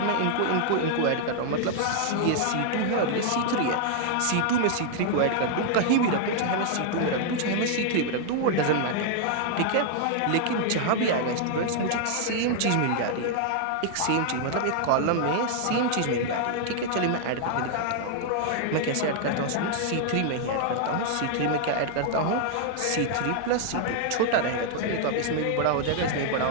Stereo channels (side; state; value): both; different; correlation 0.00